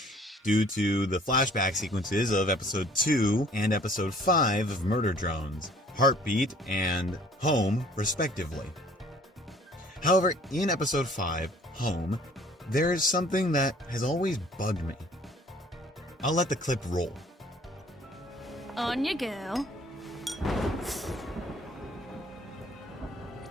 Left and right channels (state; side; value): normal; both; correlation 0.55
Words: due to the flashback sequences of episode 2 and episode 5 of Murder Drones, Heartbeat and Home, respectively. However, in episode 5, Home, there is something that has always bugged me. I'll let the clip roll. On you go.